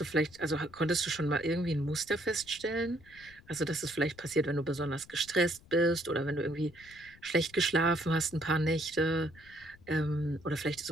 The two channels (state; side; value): noise; left; rumble, 24 dB below the sound